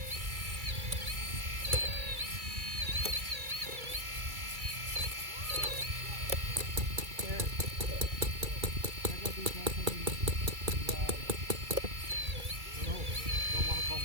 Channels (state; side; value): late; left; 2.3 ms